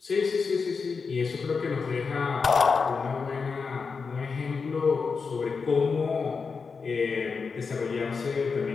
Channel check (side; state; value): right; quieter; 5.1 dB